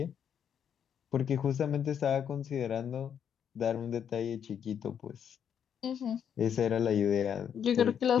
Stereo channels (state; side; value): quieter; right; 8.3 dB